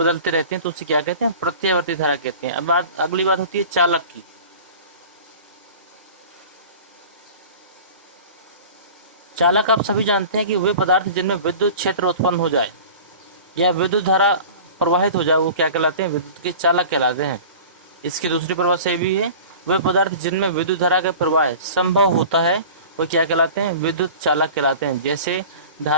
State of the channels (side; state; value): both; inverted; correlation -0.40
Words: रहते हैं तो उसे क्या कहते हैं? प्रत्यावर्ती धारा कहते हैं। अब अगली बात होती है चालक की। चालक आप सभी जानते हैं कि वे पदार्थ जिनमें विद्युत क्षेत्र उत्पन्न हो जाए या विद्युत धारा प्रवाहित हो जाए वो क्या कहलाते हैं? विद्युत के चालक कहलाते हैं। इसकी दूसरी परिभाषा भी है, वे पदार्थ जिनमें विद्युत धारा का प्रवाह संभव होता है वो क्या कहलाते हैं? विद्युत चालक कहलाते हैं। जैसे